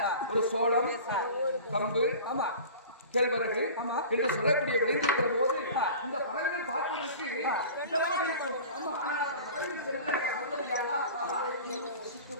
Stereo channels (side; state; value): both; inverted; correlation -0.39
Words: ஒரு சோளம் கம்பு கேழ்வரகு என்று சொல்லக்கூடிய விளைந்திருக்கிற போது இந்த பறவைகள் பார்ப்பதற்கு விட்டானா புசித்து